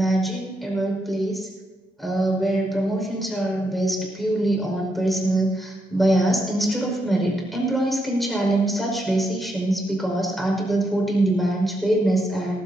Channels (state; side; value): normal; both; correlation 0.80